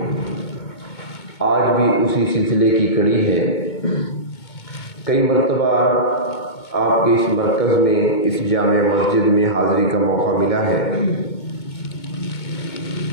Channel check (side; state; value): right; late; 2.2 ms